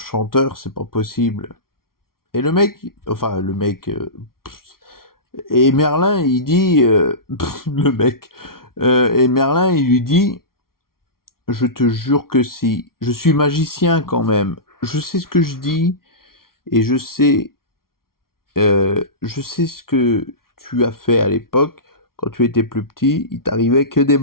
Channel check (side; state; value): right; late; 0.93 ms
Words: c'est pas possible. Et le mec, enfin le mec, et Merlin, il dit, le mec, et Merlin, il lui dit, je te jure que si, je suis magicien quand même, je sais ce que je dis, et je sais ce que tu as fait à l'époque, quand tu étais plus petit, il t'arrivait que des